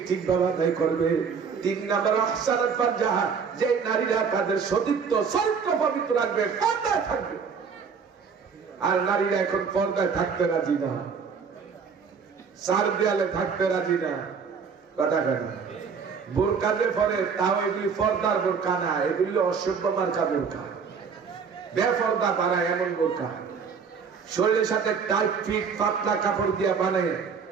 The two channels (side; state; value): left; quieter; 6.0 dB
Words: ঠিক ভাবে আদায় করবে। 3 নম্বর আহসানাত ফারজাহা, যে নারীরা তাদের সতীত্ব চরিত্র পবিত্র রাখবে, পর্দায় থাকবে। আর নারীরা এখন পর্দায় থাকতে রাজি না, 4 দেয়ালে থাকতে রাজি না। কথা কথা বোরকা যে পরে, তাও এগুলি পর্দার বোরকা না, এগুলি অসভ্য মার্কা বোরকা, বেপর্দা বানায় এমন বোরকা, শরীরের সাথে টাইট ফিট পাতলা কাপড় দিয়ে বানায়